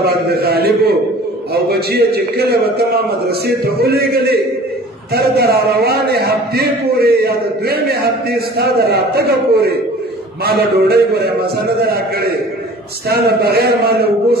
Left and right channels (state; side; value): normal; both; correlation 0.46